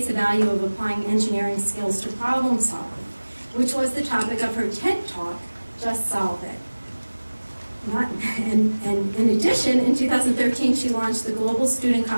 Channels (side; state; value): both; inverted; correlation -1.00